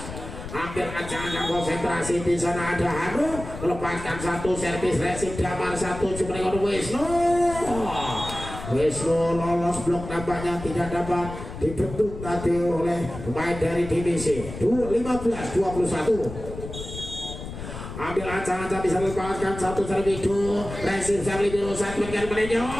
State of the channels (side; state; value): left; noise; rumble, 10 dB below the sound